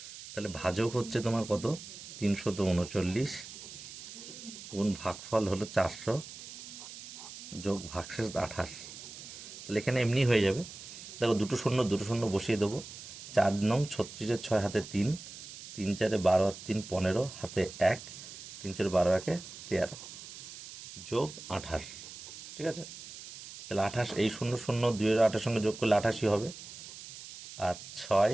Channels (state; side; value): noise; right; hiss, 13 dB below the sound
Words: তাহলে ভাজক হচ্ছে তোমার কত, 339 গুণ ভাগফল হলো 400 যোগ ভাগশেষ 28। তাহলে এখানে এমনি হয়ে যাবে। দেখো দুটো শূন্য বসিয়ে দেবো। 4 নং 36-এর 6 হাতে 3, 3 4-এ 12 আর 3 15 হাতে 1, 3 4 12 1-এ 13 যোগ 28। ঠিক আছে, তাহলে 28, এই 0 2 এর 8-এর সঙ্গে যোগ করলে 88 হবে। আর 6